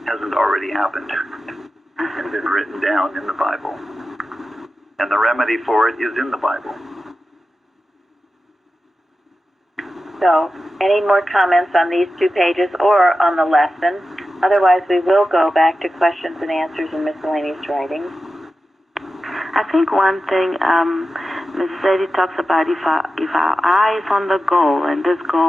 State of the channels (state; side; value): normal; both; correlation 0.92